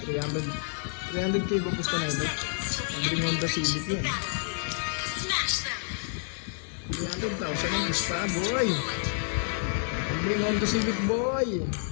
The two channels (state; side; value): silent; right; digital silence